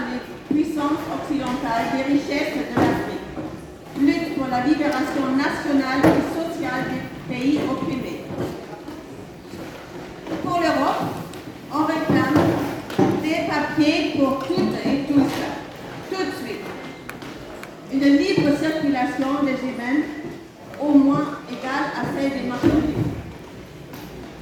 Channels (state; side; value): identical; both; correlation 1.00